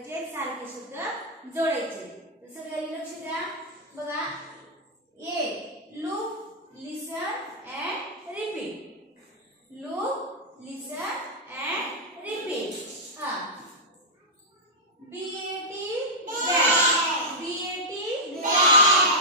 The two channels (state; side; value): normal; both; correlation -0.06